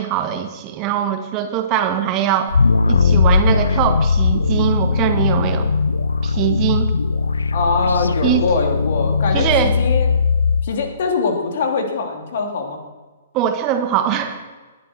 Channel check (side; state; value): both; inverted; correlation -0.56